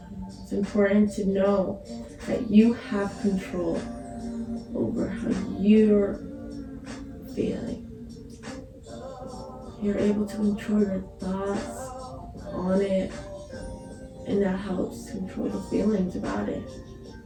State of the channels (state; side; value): identical; both; correlation 1.00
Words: It's important to know that you have control over how you're feeling. You're able to control your thoughts on it, and that helps control the feelings about it.